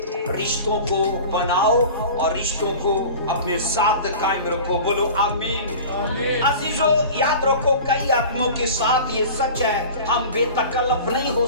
रिश्तों को बनाओ और रिश्तों को अपने साथ कायम रखो। बोलो आमीन। अजीजों, याद रखो, कई आदमियों के साथ ये सच है, हम बेतकल्लफ नहीं हो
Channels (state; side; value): inverted; both; correlation -0.37